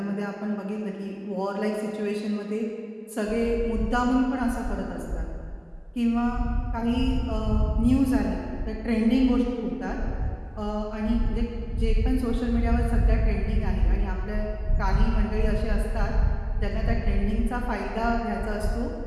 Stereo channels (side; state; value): both; identical; correlation 1.00